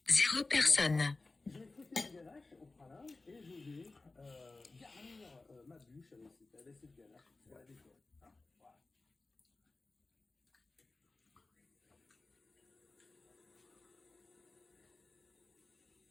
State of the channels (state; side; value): quieter; right; 3.4 dB